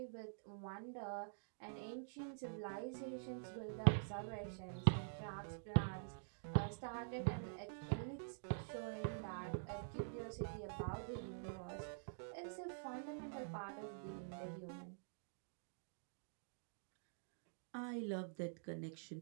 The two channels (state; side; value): silent; left; digital silence